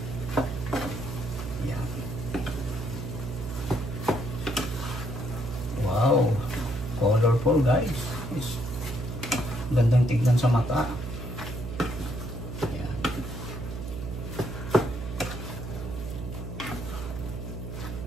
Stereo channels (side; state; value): right; noise; hum, 7 dB below the sound